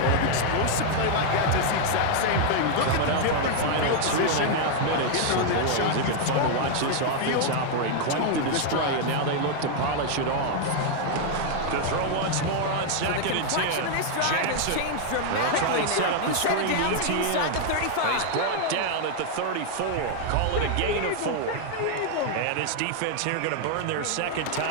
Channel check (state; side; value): different; both; correlation 0.00